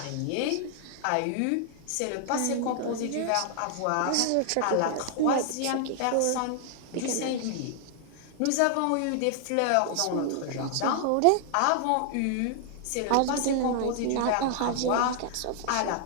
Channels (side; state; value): both; different; correlation 0.00